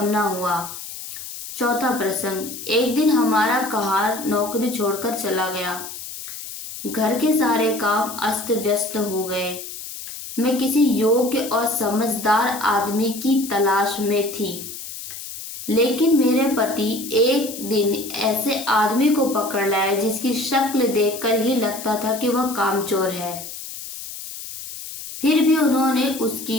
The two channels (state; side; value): noise; left; hiss, 10 dB below the sound